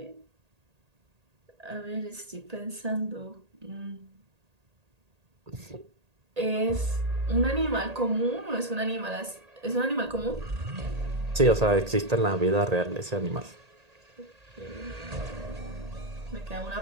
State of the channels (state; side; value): late; left; 1.8 ms